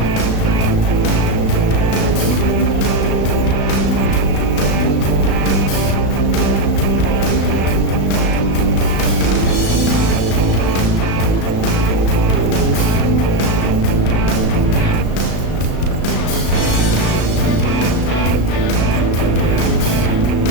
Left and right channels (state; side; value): late; right; 35 ms